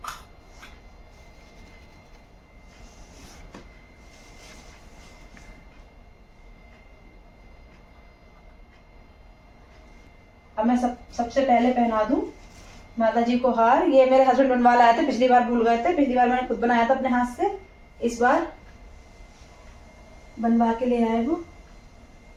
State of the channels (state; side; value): identical; both; correlation 1.00